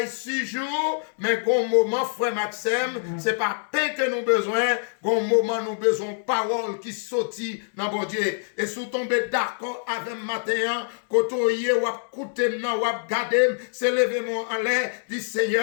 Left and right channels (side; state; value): right; silent; digital silence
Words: 6 jours, mais gon moment, frère Maxime, c'est pas pain que nous besoin, gon moment nous besoin parole qui sortit dans bon Dieu. Et sous tomber d'accord avec matin, côtoyer ou écouter nan ou garder, c'est lever mon en l'air, dit